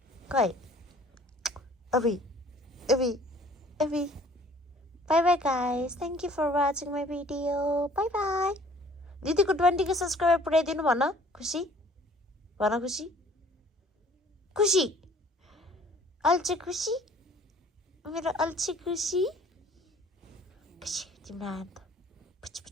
अभी bye bye guys thank you for watching my video bye bye दिदीको 20K सब्सक्राइबर पुऱ्याइदिनु भन खुसी खुसी अल्छी खुसी मेरो अल्छी खुसी तिम्रो हात पुछ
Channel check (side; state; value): both; normal; correlation 0.54